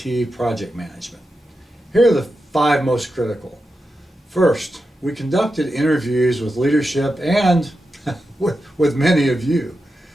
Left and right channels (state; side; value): normal; both; correlation 0.89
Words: project management. Here are the 5 most critical. First, we conducted interviews with leadership and with many of you.